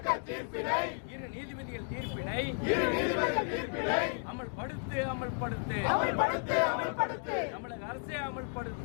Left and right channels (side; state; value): right; silent; 55 dB below the other